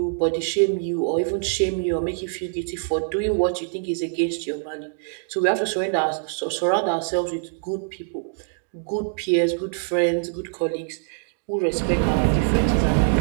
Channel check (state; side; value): silent; left; digital silence